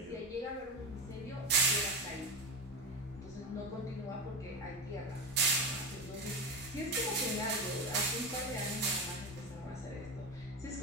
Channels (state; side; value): normal; both; correlation 0.20